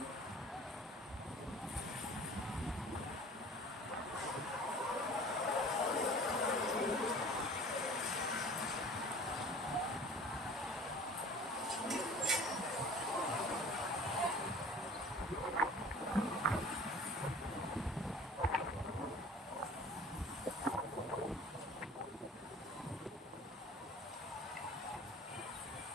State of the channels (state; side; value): normal; both; correlation 0.45